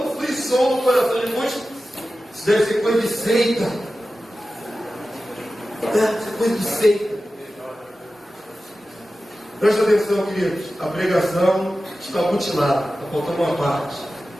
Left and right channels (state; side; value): normal; both; correlation 0.94